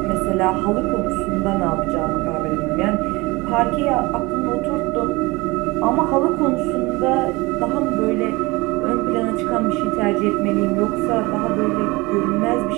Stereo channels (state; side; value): quieter; left; 23.1 dB